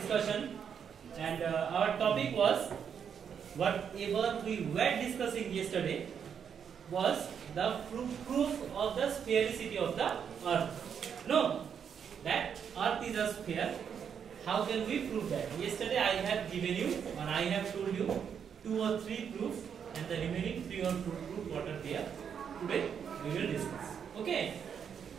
and our topic was whatever we were discussing yesterday was the proof of the sphericity of the earth. No, that earth is a sphere. How can we prove that? Yesterday I have given you, or I have told you 2 or 3 proofs, and the remaining 3 or 2 proofs what are there. Today we will discuss. Okay.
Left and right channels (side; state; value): left; quieter; 7.6 dB